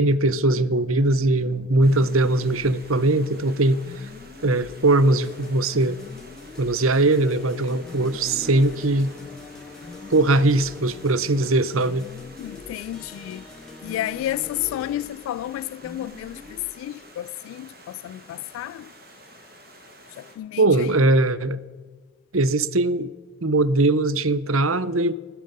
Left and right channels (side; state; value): both; normal; correlation 0.33